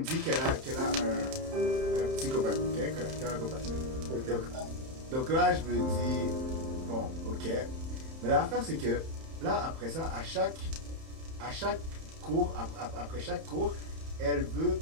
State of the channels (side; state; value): left; late; 31 ms